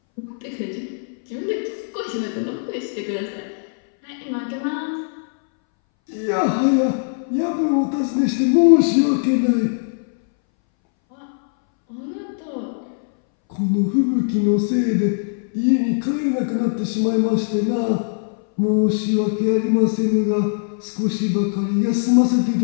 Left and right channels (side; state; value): right; silent; 62 dB below the other